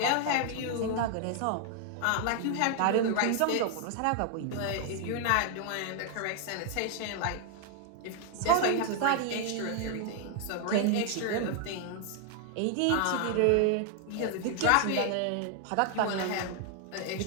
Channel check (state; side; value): different; both; correlation 0.00